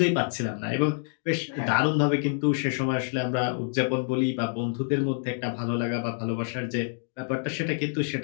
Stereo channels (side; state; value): right; silent; digital silence